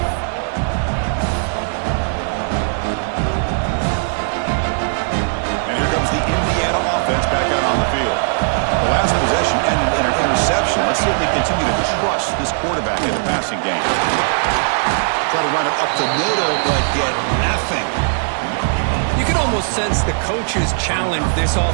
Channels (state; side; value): silent; left; digital silence